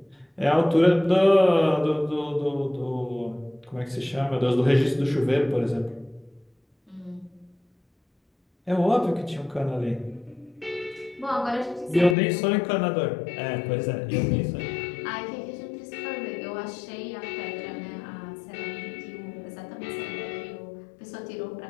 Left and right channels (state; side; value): drops out; right; at 12.2 s